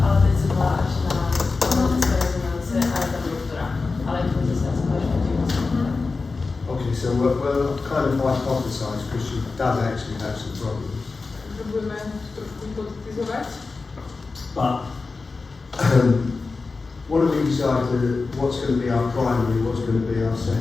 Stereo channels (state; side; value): quieter; right; 4.1 dB